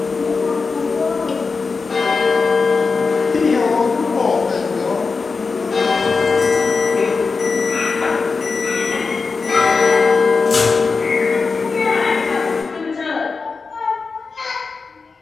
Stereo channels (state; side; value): quieter; right; 4.6 dB